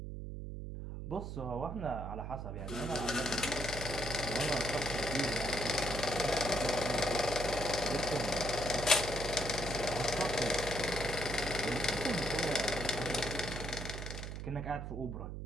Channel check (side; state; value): right; noise; hum, 6 dB below the sound